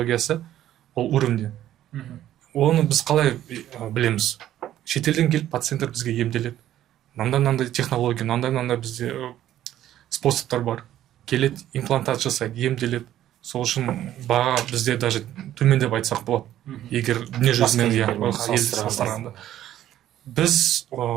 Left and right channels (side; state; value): left; quieter; 12.4 dB